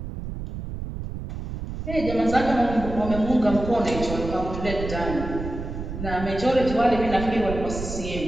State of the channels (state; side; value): noise; right; rumble, 7 dB below the sound